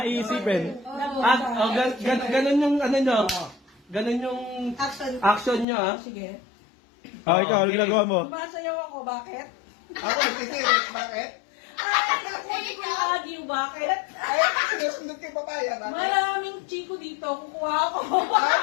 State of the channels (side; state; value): right; drops out; at 5.7 s